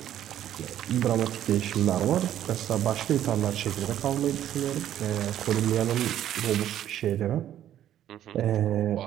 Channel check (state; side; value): quieter; left; 11.5 dB